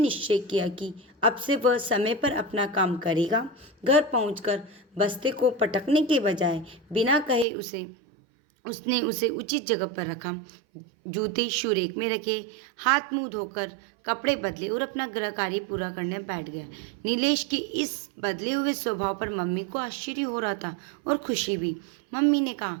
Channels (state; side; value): drops out; left; at 7.5 s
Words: किया कि अब से वह समय पर अपना काम करेगा। घर पहुंचकर बस्ते को पटकने के बजाय बिना कहे उसने उसे उचित जगह पर रखा, जूते शू रैक में रखे, हाथ मुंह धोकर कपड़े बदले और अपना गृह कार्य पूरा करने बैठ गया। नीलेश के इस बदले हुए स्वभाव पर मम्मी को आश्चर्य हो रहा था और खुशी भी। मम्मी ने कहा,